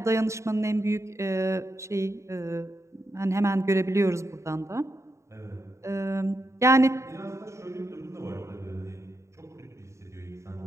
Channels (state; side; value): late; left; 0.14 ms